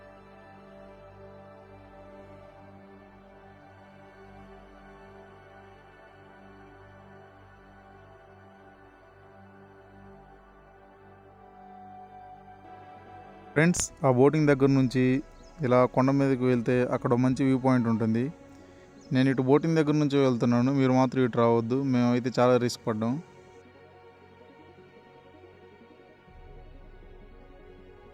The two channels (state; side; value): identical; both; correlation 1.00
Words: ఫ్రెండ్స్, ఆ బోటింగ్ దగ్గర నుంచి ఇలా కొండ మీదకి వెళ్తే అక్కడ మంచి వ్యూ పాయింట్ ఉంటుంది. నేను ఇటు బోటింగ్ దగ్గర నుంచి వెళ్తున్నాను, మీరు మాత్రం ఇటు రావద్దు, మేమైతే చాలా రిస్క్ పడ్డాం.